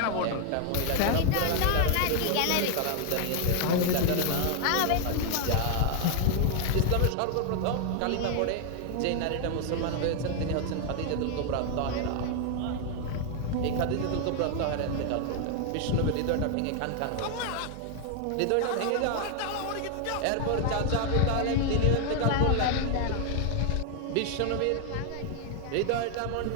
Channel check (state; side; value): different; both; correlation 0.00